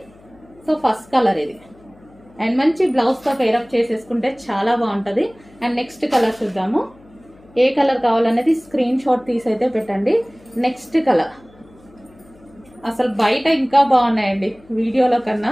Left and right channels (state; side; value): noise; left; hum, 27 dB below the sound